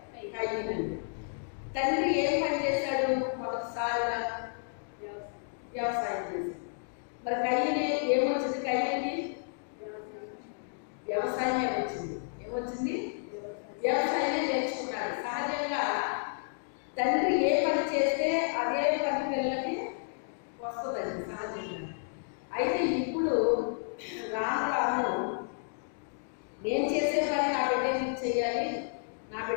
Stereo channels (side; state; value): right; silent; digital silence